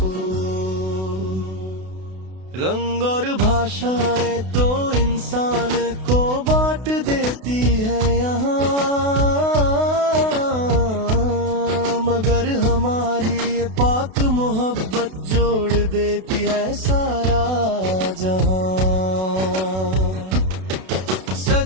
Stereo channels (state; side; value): late; left; 32 ms